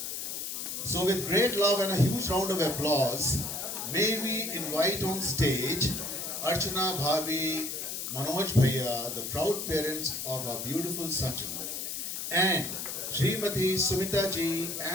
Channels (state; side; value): noise; left; hiss, 5 dB below the sound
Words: So with great love and a huge round of applause, may we invite on stage Archana Bhabi, Manoj Bhaiya, the proud parents of our beautiful Sanjana, and Srimati Sumita ji